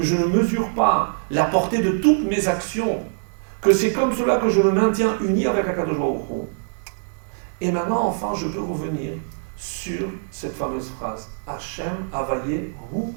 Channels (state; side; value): silent; left; digital silence